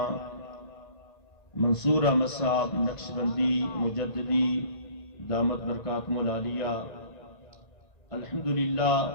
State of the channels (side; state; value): right; late; 1.9 ms